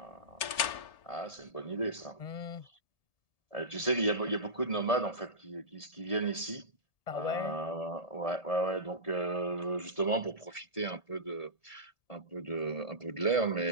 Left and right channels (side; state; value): right; late; 1.7 ms